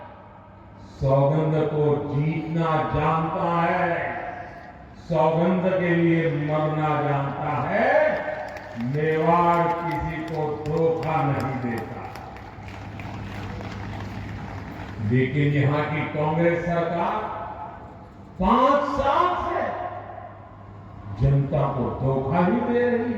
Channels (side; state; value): both; identical; correlation 1.00